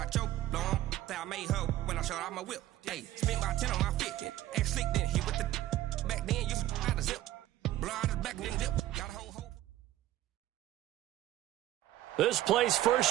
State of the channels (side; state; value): left; quieter; 14.3 dB